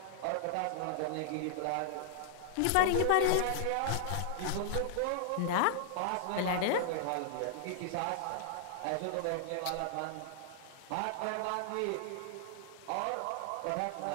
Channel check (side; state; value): both; different; correlation -0.01